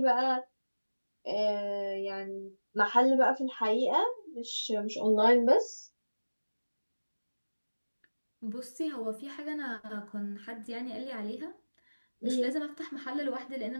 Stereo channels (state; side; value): inverted; both; correlation -1.00